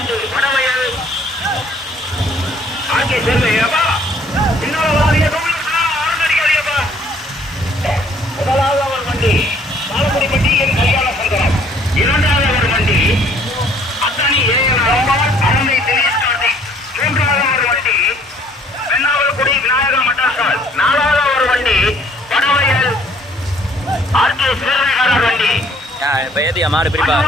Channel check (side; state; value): both; normal; correlation 0.60